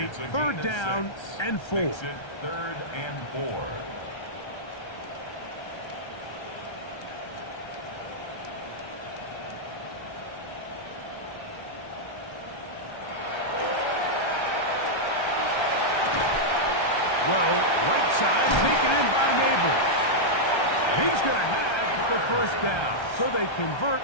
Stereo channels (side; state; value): right; late; 1.3 ms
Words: 3rd down and 4. Makes it 3rd and 4. Throw, right side, taken in by Neighbors. He's going to have the 1st down. So they convert